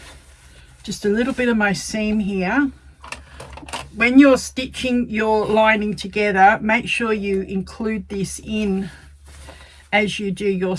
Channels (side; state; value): both; identical; correlation 1.00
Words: just a little bit of my seam here. When you're stitching your lining together, make sure you include this in as you do your